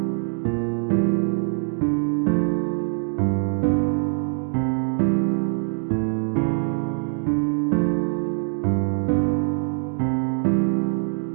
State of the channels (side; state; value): left; silent; 56 dB below the other